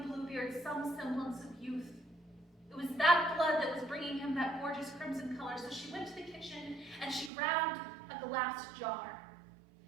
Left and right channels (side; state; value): left; drops out; at 7.3 s